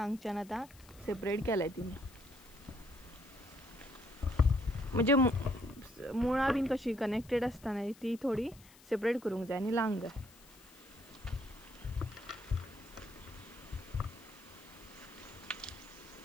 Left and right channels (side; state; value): left; noise; hiss, 23 dB below the sound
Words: आतां सेपरेट केलाय तिने, म्हणजे मुळां बीन कशी कनेक्टेड आसता न्हय ती थोडी सेपरेट करूंक जाय आनी लावंक जाय.